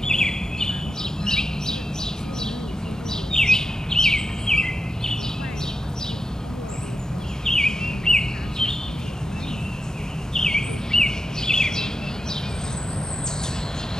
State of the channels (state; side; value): normal; both; correlation 0.88